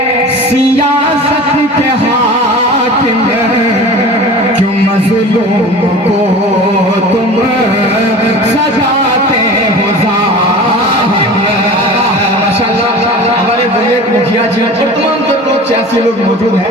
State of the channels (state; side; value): normal; both; correlation 0.37